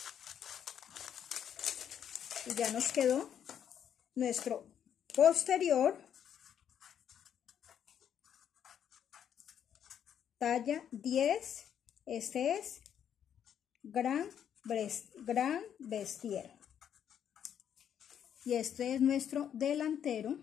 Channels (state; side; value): quieter; right; 9.1 dB